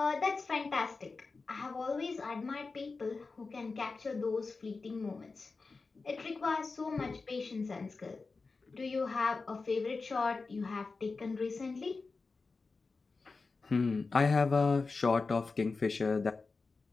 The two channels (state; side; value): quieter; right; 4.1 dB